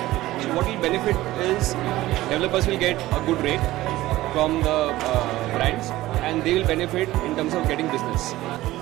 So what will benefit is developers will get a good rate from the brands and they will benefit in terms of getting business.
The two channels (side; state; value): left; quieter; 16.6 dB